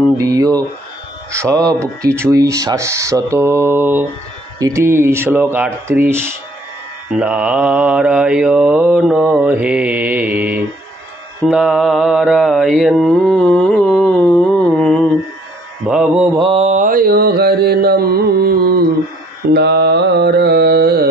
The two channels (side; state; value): both; normal; correlation 0.61